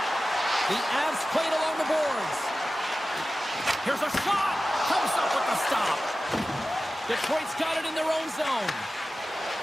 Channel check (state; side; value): normal; both; correlation 0.95